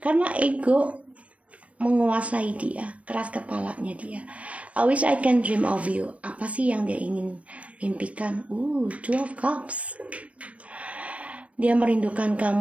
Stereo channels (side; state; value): left; late; 0.064 ms